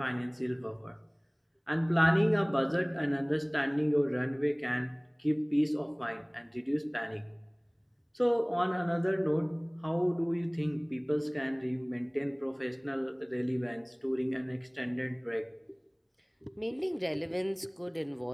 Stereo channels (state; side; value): identical; both; correlation 1.00